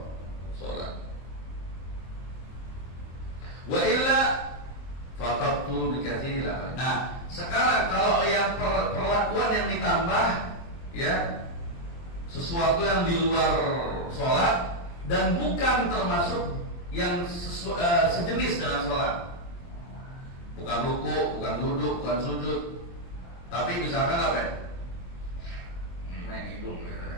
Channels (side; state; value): right; late; 23 ms